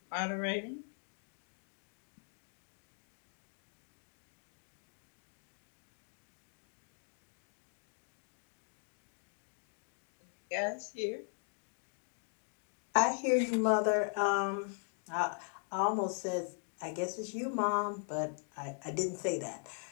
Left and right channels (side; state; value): right; silent; 51 dB below the other